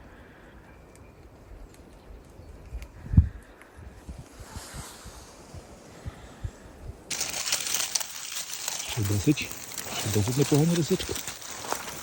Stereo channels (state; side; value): identical; both; correlation 1.00